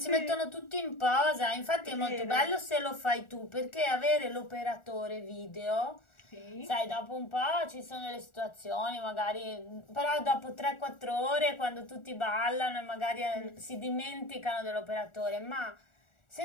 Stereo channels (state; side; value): late; right; 1.4 ms